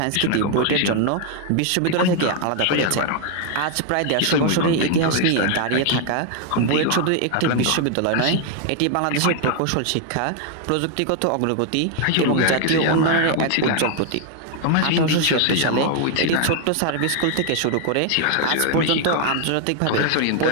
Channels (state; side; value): different; both; correlation 0.00